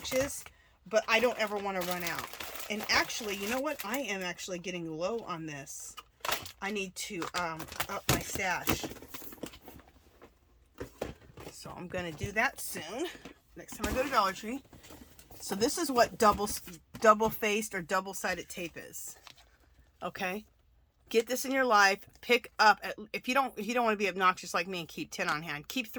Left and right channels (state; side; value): identical; both; correlation 1.00